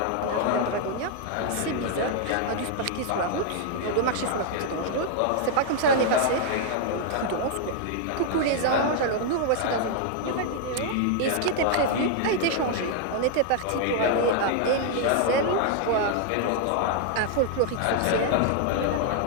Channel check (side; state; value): both; different; correlation 0.00